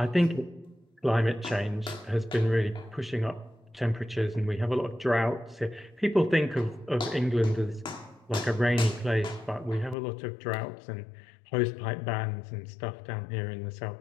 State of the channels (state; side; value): drops out; right; at 10.0 s